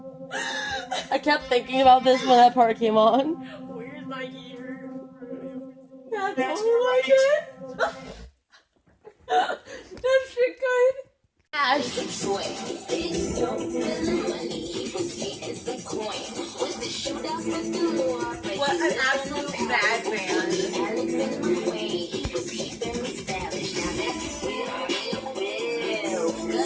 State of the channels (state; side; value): identical; both; correlation 1.00